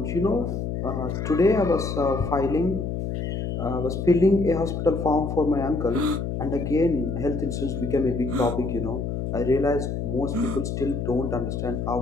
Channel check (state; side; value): noise; left; hum, 3 dB below the sound